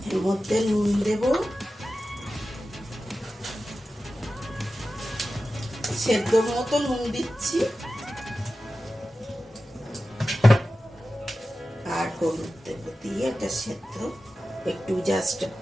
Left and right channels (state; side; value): normal; both; correlation 0.94